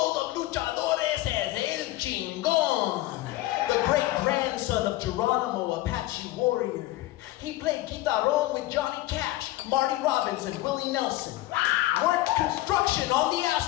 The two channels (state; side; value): quieter; right; 16.6 dB